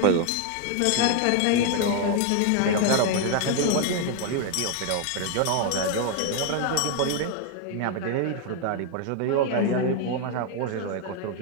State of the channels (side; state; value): both; different; correlation 0.00